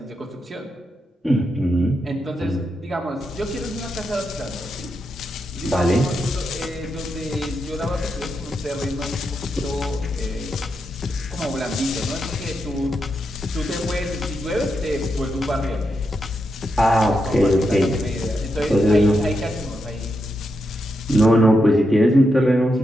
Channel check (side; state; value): both; normal; correlation 0.84